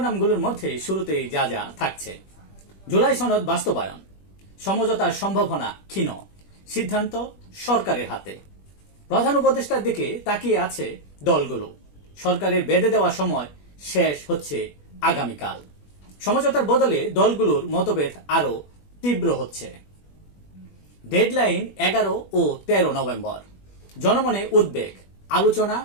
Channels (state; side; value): late; right; 21 ms